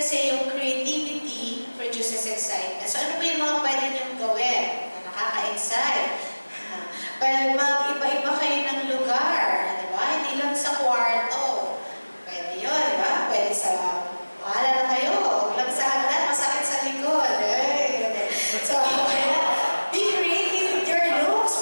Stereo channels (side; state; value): both; inverted; correlation -1.00